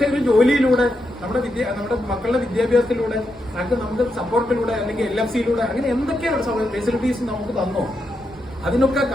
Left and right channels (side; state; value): both; normal; correlation 0.84